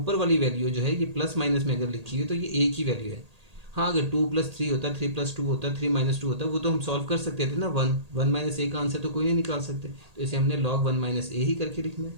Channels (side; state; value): left; late; 1.8 ms